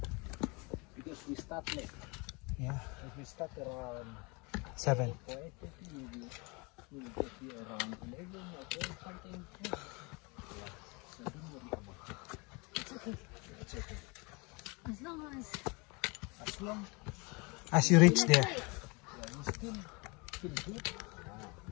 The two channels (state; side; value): quieter; right; 28.7 dB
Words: Because we start late. Yeah. If we start around 7. 8:30, maybe we'll get here around 11 or 12 something. It's okay. As long As you reach there.